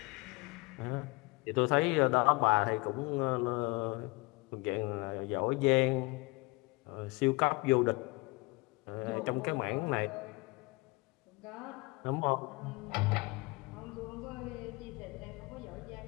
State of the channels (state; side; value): quieter; right; 26.0 dB